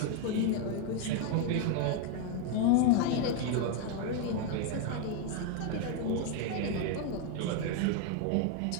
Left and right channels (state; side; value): different; both; correlation 0.00